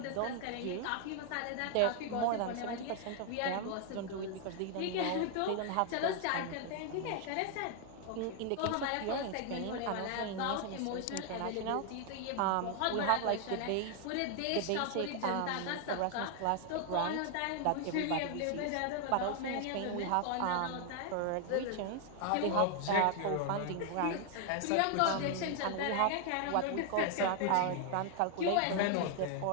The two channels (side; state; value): both; different; correlation 0.00